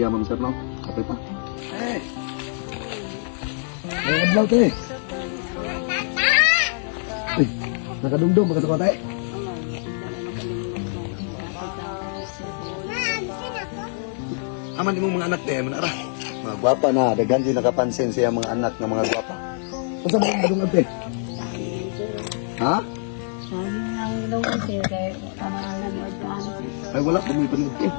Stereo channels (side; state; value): right; silent; 59 dB below the other